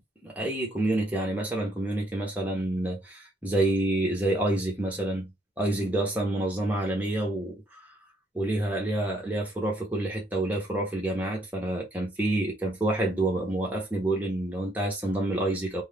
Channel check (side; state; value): both; normal; correlation 0.69